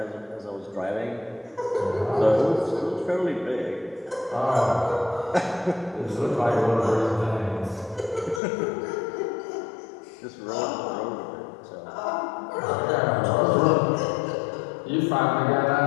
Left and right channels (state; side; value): drops out; right; at 8.4 s